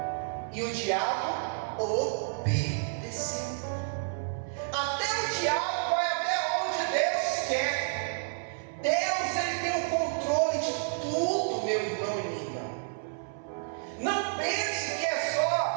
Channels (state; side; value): silent; left; 58 dB below the other